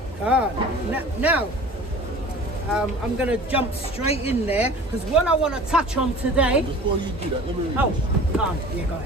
Now, I'm going to jump straight in there, because what I want to touch on today... Before you do that, let me read go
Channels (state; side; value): normal; both; correlation 0.42